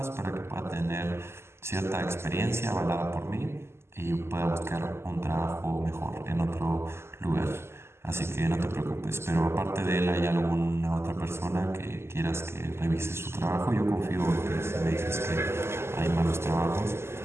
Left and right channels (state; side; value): late; left; 0.12 ms